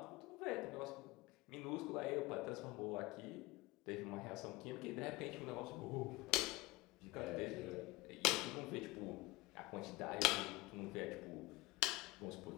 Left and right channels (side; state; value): right; quieter; 21.6 dB